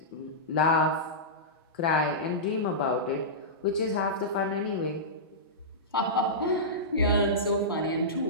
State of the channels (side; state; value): both; normal; correlation -0.16